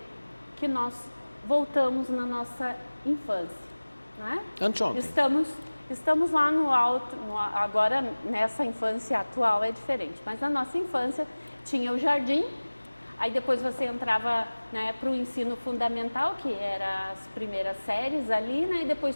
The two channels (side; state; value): both; inverted; correlation -1.00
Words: que nós voltamos na nossa infância, né? Anteontem. Estamos lá no alto, agora nessa infância atual é diferente, mas na nossa infância tinha o jardim, aí depois você entrava, né, para o ensino fundamental, que era as primeiras séries ali, né, e depois